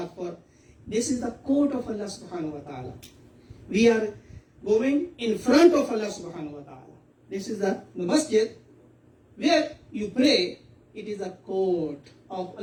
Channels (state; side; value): identical; both; correlation 1.00